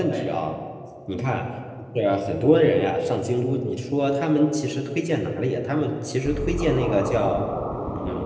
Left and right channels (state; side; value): identical; both; correlation 1.00